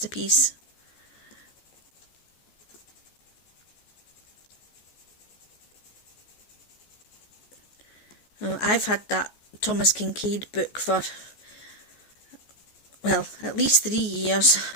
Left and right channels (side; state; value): right; late; 14 ms